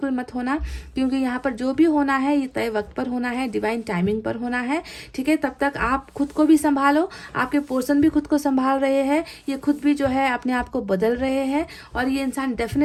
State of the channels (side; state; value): both; identical; correlation 1.00